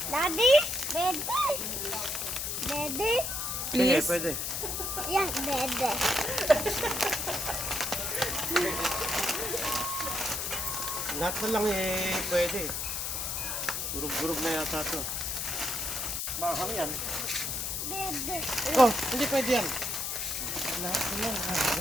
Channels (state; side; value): noise; left; hiss, 2 dB below the sound